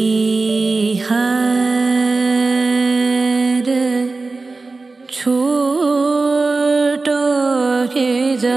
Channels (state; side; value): quieter; left; 3.7 dB